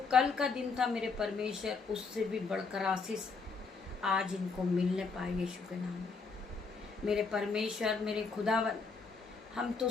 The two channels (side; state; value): right; quieter; 4.6 dB